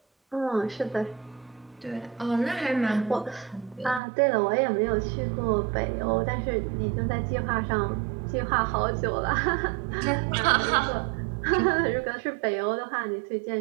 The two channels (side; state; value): left; drops out; at 4.0 s